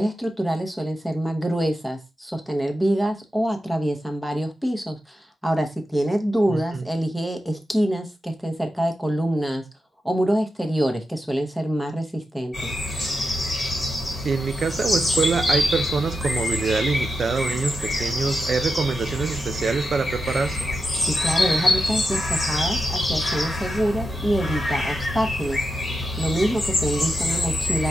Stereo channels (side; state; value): both; normal; correlation 0.88